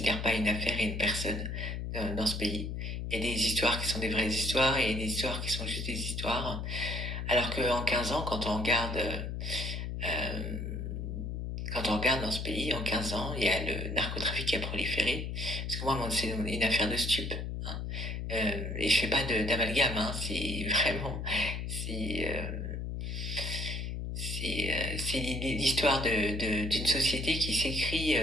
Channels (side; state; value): left; noise; hum, 4 dB below the sound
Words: pas une affaire et une personne dans ce pays. Il y a des histoires qui sont des vraies histoires et des histoires qui sont juste des histoires. Alors qu'en 15 ans, euh, quand on regarde dans ce pays, en 15 ans, il y a le narcotrafic qui a proliféré. Parce que moi, c'est une affaire de stupes. Hein. Et je fais pas d'amalgame, hein, c'est vraiment, c'est, c'est l'histoire d'une société qui s'écrit,